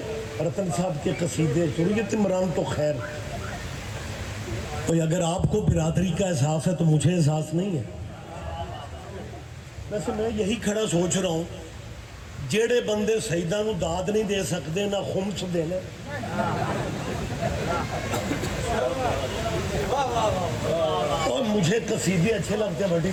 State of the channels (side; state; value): both; identical; correlation 1.00